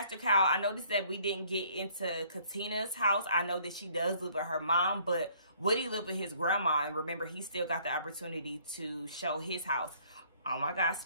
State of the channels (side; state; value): both; inverted; correlation -0.61